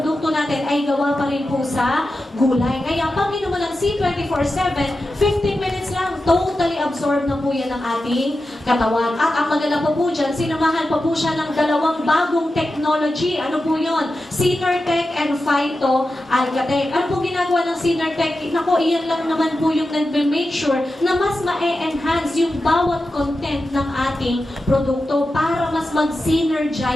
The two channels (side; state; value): both; normal; correlation 0.91